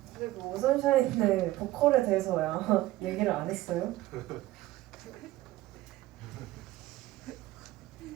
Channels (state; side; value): quieter; left; 16.6 dB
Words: 그리고 오선샤인의 보컬에 대해서야 얘기를 안 했어요?